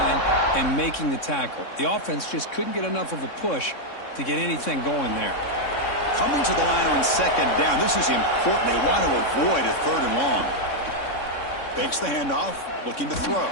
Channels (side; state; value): right; late; 3.6 ms